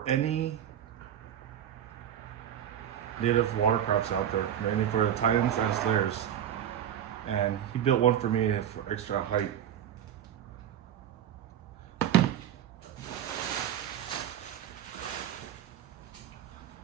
any native watercrafts out there, mainly for the Titans and Slayers. And he built one for me for extra height.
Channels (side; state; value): left; quieter; 10.1 dB